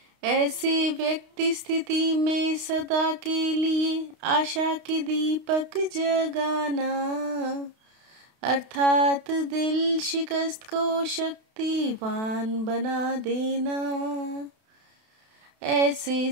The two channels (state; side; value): late; left; 32 ms